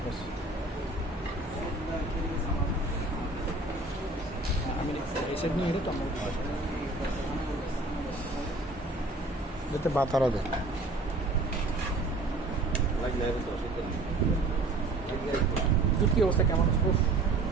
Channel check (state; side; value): quieter; left; 3.1 dB